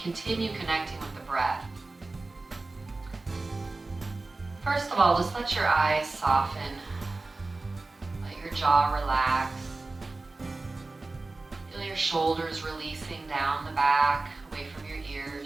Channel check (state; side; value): quieter; left; 3.3 dB